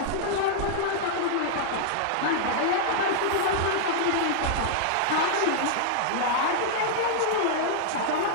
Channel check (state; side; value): different; both; correlation -0.01